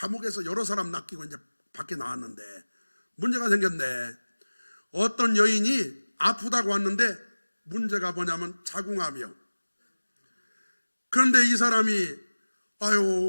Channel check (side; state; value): both; inverted; correlation -1.00